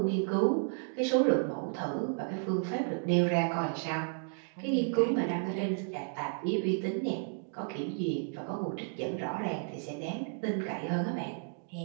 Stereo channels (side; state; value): left; silent; 56 dB below the other